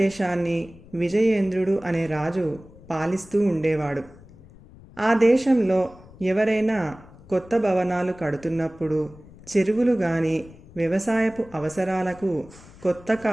విజయేంద్రుడు అనే రాజు పాలిస్తూ ఉండేవాడు. ఆ దేశంలో ఎవరైనా కొత్త భవనాలు కడుతున్నప్పుడు, చెరువులు కానీ వ్యవసాయపు అవసరాలకు కొత్త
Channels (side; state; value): left; noise; rumble, 22 dB below the sound